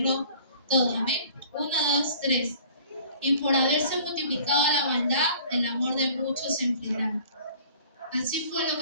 todo. Amén. 1, 2, 3. Y por haberse multiplicado la maldad, el amor de muchos se enfriará. Así fue lo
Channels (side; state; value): both; inverted; correlation -0.49